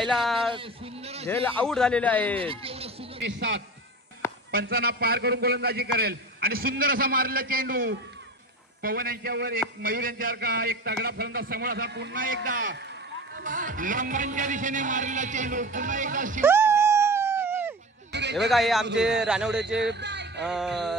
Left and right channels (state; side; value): normal; both; correlation 0.33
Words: झेल आउट झालेले आहेत. 7 पंचांना पार करून गोलंदाजी करेल आणि सुंदर असा मारलेला चेंडू पवन यांच्यावर एक मयूर यांच्यासारखा एक तगडा फलंदाज समोर असा पुन्हा एकदा लंबांच्या दिशेने मारलेला चेंडू पुन्हा एकदा हे बघा हे आमचे रानवडेचे